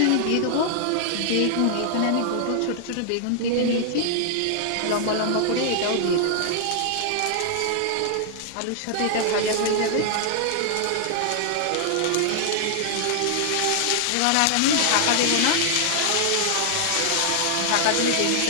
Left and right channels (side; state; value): both; different; correlation 0.00